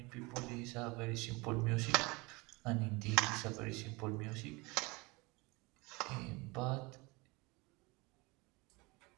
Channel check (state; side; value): quieter; left; 25.2 dB